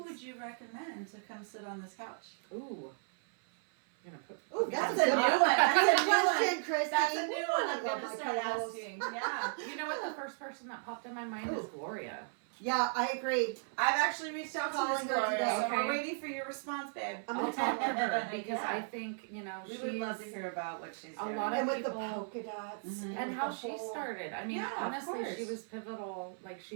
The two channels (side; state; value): left; silent; 54 dB below the other